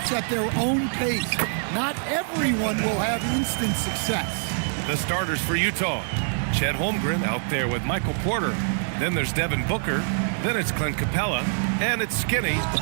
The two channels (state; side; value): silent; left; digital silence